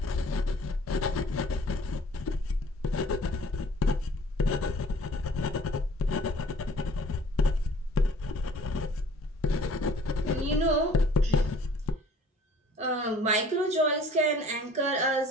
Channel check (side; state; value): both; normal; correlation 0.52